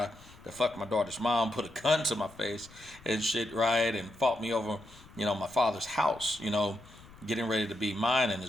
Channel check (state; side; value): noise; left; rumble, 22 dB below the sound